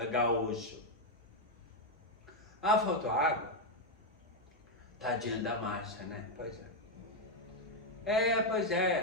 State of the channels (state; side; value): normal; both; correlation 0.02